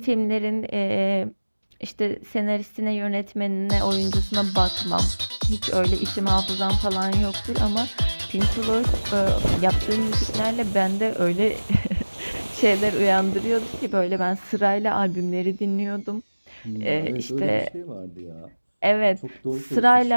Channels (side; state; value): both; inverted; correlation -1.00